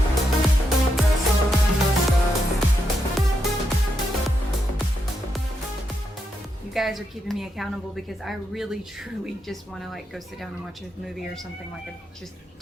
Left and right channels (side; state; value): both; normal; correlation 0.83